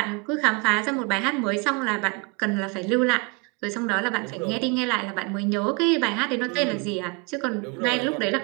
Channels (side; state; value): left; quieter; 30.3 dB